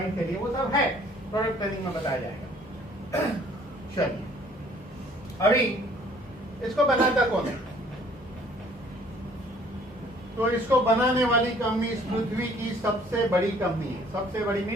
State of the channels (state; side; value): normal; both; correlation 0.57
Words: के लिए, वो सब है, प्रोडक्ट ट्रेनिंग में बताया जाएगा। चलिए अभी इसको बनाता कौन है? तो इसको बनाने वाली कंपनी इस पृथ्वी की सबसे बड़ी कंपनी है। सबसे बड़ी